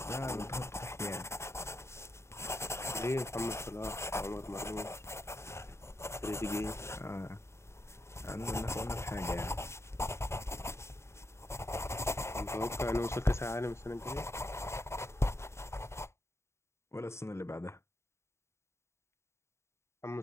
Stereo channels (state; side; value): late; right; 0.13 ms